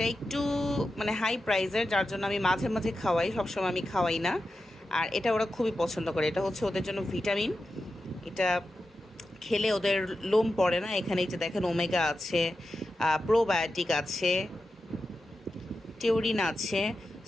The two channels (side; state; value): both; normal; correlation 0.91